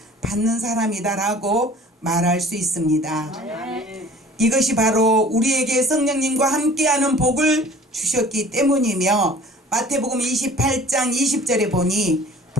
받는 사람이다라고 말할 수 있습니다. 이것이 바로 우리에게 성령님과 함께하는 복을 주셨기 때문이며, 마태복음 28장 20절에 보니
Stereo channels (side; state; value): both; normal; correlation 0.47